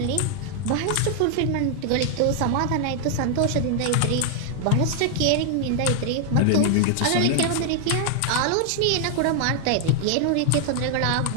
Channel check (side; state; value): both; different; correlation 0.00